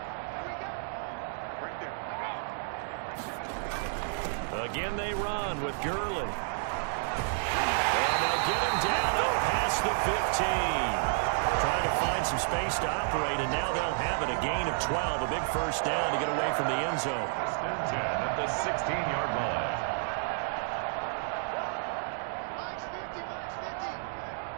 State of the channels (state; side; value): silent; left; digital silence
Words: Again they run with Gurley. And they'll get him down out past the 15. Trying to find some space to operate, and now they'll have it. A gain of 12, a big first down to get away from the end zone. 10 at the 16-yard line.